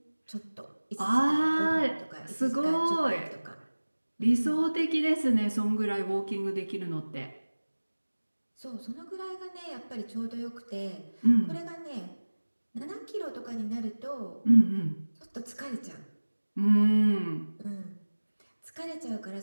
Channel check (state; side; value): inverted; both; correlation -1.00